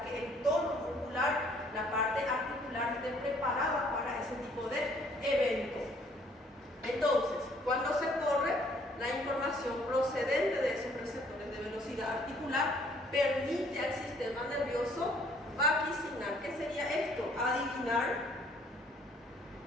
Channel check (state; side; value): normal; both; correlation 0.61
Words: que el tono muscular, la parte articular esté preparada para ese tipo de evento. Entonces, cuando se corre, la información procedente de esos receptores de velocidad articular permite al sistema nervioso vaticinar. ¿Qué sería esto? Adivinar